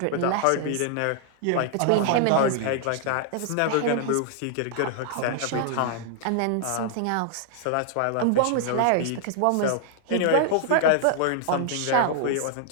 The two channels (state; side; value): different; both; correlation -0.01